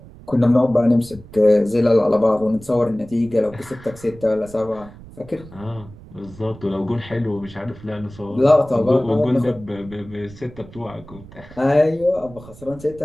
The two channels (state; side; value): noise; right; rumble, 19 dB below the sound